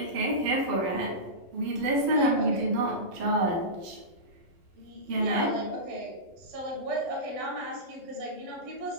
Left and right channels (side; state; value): left; late; 12 ms